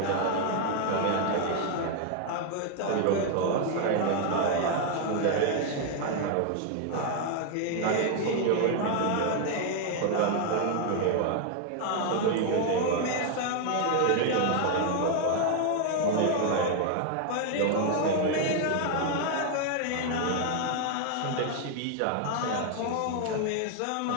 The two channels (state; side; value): different; both; correlation 0.00